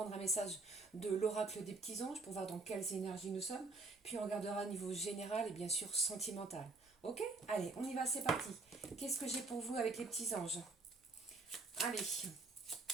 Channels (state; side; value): quieter; left; 3.6 dB